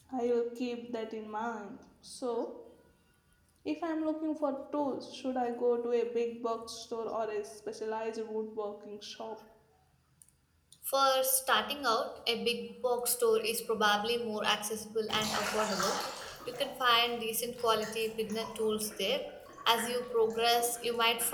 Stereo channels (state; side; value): identical; both; correlation 1.00